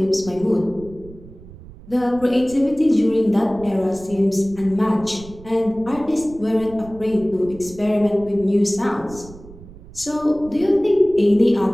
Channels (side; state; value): right; noise; rumble, 19 dB below the sound